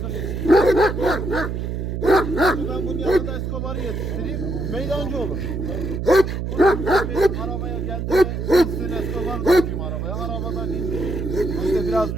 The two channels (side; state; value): right; noise; hum, 3 dB below the sound